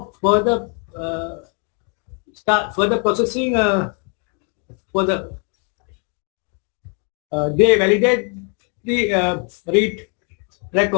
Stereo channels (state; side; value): quieter; right; 38.5 dB